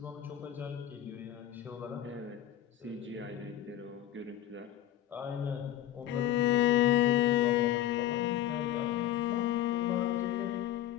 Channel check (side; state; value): right; quieter; 12.3 dB